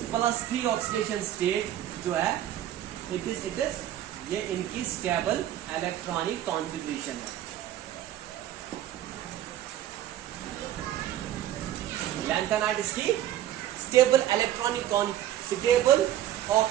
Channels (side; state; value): left; quieter; 12.4 dB